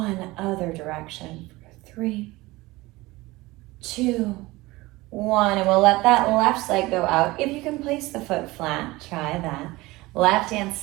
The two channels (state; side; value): quieter; left; 20.5 dB